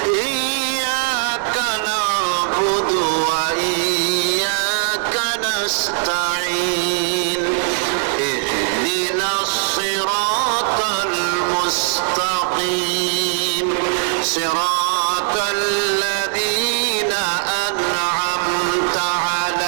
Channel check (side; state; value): left; silent; 57 dB below the other